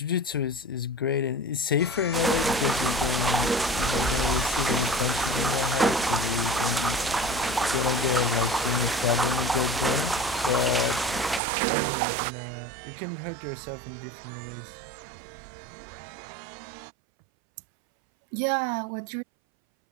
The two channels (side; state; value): left; drops out; at 11.4 s